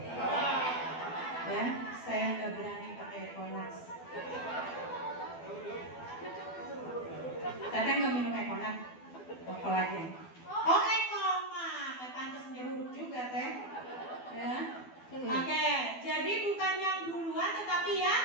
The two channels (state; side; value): late; right; 12 ms